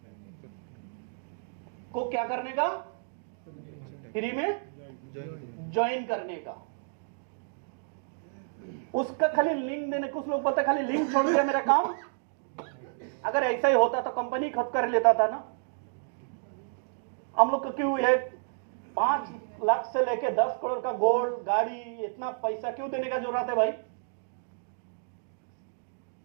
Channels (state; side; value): silent; left; digital silence